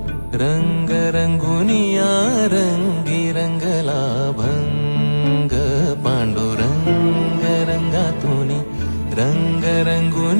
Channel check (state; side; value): inverted; both; correlation -1.00